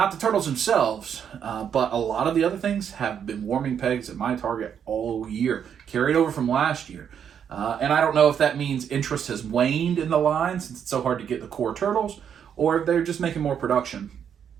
the turtles themselves, but a lot of the other things have been warming pegs at my Target all year, carried over from last year. And I don't know if that means interest has waned in the line since it's so hard to get the core turtles, or if they're just making more production.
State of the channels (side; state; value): left; quieter; 8.2 dB